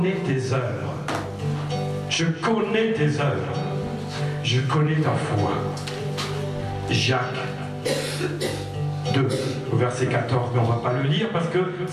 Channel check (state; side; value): identical; both; correlation 1.00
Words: tes œuvres. Je connais tes œuvres. Je connais ta foi. Jacques 2, au verset 14, mais on ne va pas le lire parce que